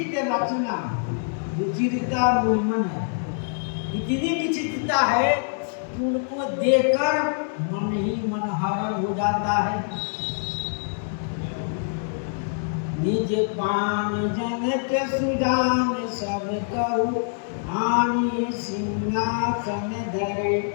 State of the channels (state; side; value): silent; right; 60 dB below the other